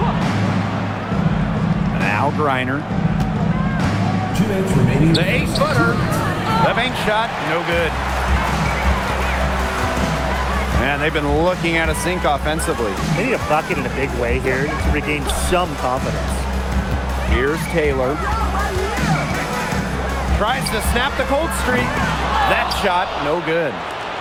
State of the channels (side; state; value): both; identical; correlation 1.00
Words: Now Griner. 2 minutes remaining. The 8-footer. The bank shot, no good. Man, they've been looking at a sink offensively. They need a bucket in a big way here to regain some confidence. Here's Taylor. Tries to snap the cold streak. That shot, no good.